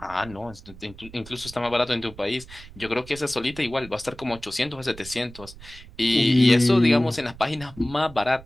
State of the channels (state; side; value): noise; right; rumble, 19 dB below the sound